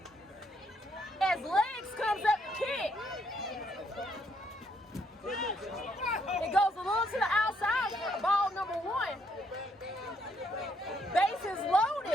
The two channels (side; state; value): both; normal; correlation 0.72